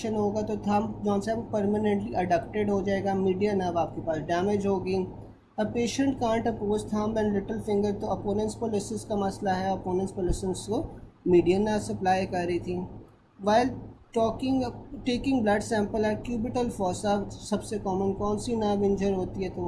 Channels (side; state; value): both; identical; correlation 1.00